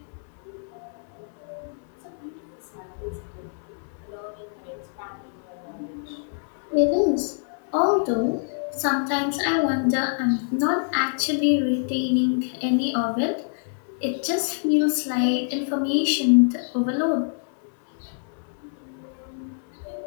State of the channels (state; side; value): silent; right; digital silence